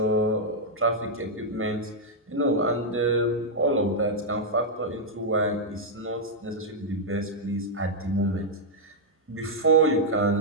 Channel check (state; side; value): normal; both; correlation -0.04